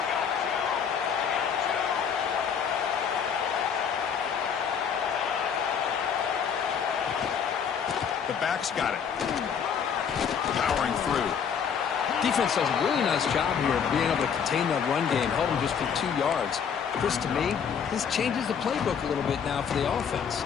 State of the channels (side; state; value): right; quieter; 7.2 dB